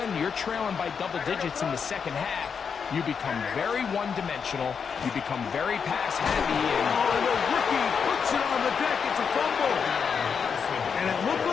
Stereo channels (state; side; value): quieter; right; 6.4 dB